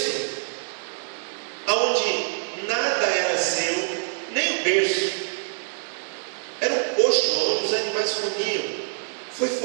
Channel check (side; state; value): left; silent; digital silence